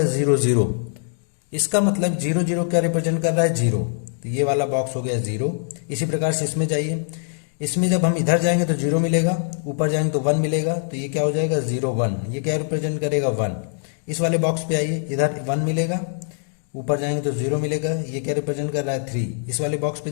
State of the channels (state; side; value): silent; right; digital silence